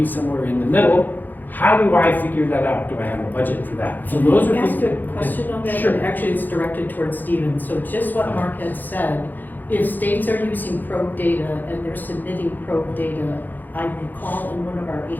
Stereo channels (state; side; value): late; right; 0.086 ms